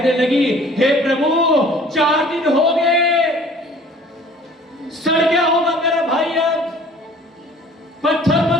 लगी, हे प्रभु, 4 दिन हो गए, सड़ गया होगा मेरा भाई, अब पत्थर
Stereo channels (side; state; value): both; normal; correlation 0.50